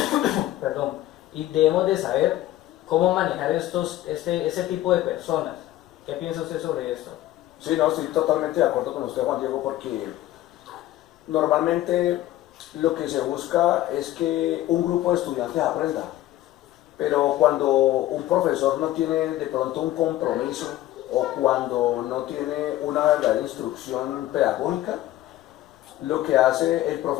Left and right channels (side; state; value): right; quieter; 14.7 dB